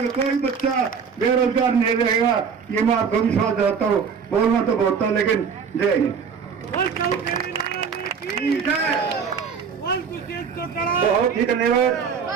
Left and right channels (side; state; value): left; quieter; 6.4 dB